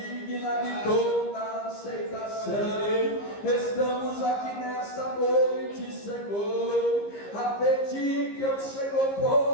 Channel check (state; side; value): late; right; 15 ms